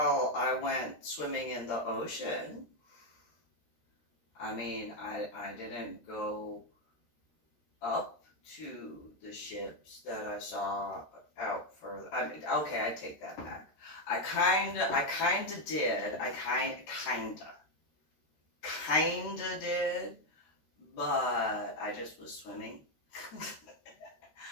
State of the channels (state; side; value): late; right; 13 ms